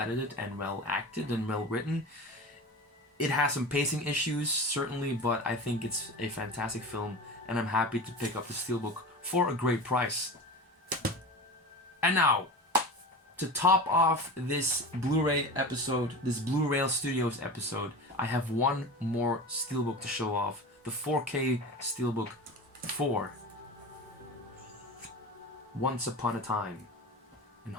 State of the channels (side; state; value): both; normal; correlation 0.31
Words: and well acted and well written. It has some pacing issues, certainly, but I think it's a fantastic film, and I'm happy to pick up the Steelbook for a great price. And now, to top off this Blu-ray episode, this Blureel Studios episode, I have one more Steelbook to show off. The 4K Steelbook for Once Upon a Time in